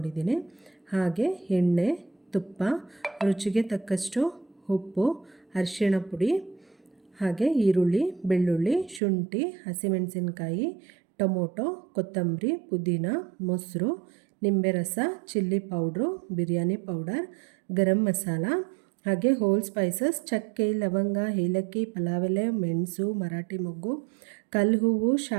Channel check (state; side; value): drops out; left; at 9.0 s